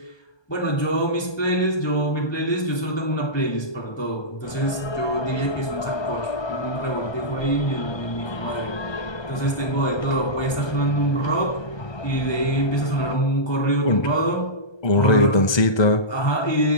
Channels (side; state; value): right; late; 1.2 ms